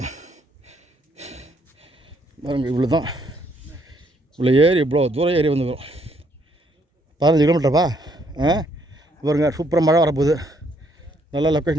இவ்வளோ தான். இவ்வளோ ஏறி இவ்வளோ தூரம் ஏறி வந்துடும். 15 கிலோமீட்டர்ப்பா. பாருங்க சூப்பராக மழை வரப்போகுது. நல்லா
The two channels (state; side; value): normal; both; correlation 0.69